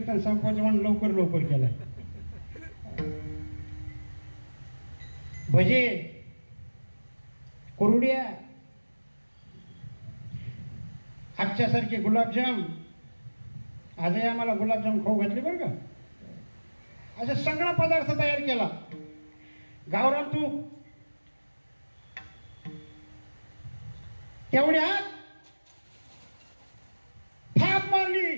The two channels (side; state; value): both; inverted; correlation -1.00